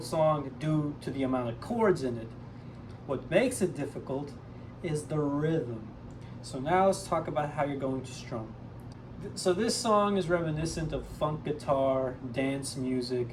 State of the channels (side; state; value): both; identical; correlation 1.00